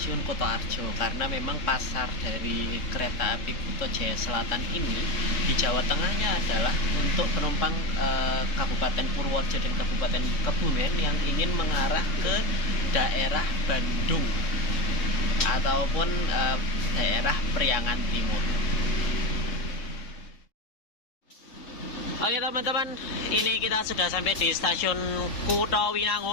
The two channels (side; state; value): right; late; 3.6 ms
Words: Kutoarjo, karena memang pasar dari kereta api Kuto Jaya Selatan ini di Jawa Tengahnya adalah untuk penumpang Kabupaten Purworejo dan Kabupaten Kebumen yang ingin mengarah ke daerah Bandung ataupun daerah Priangan Timur. Oke teman-teman, ini kita sudah sampai di stasiun